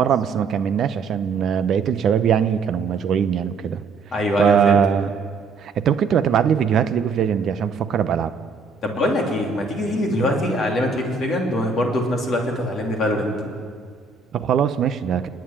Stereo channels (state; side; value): quieter; left; 4.6 dB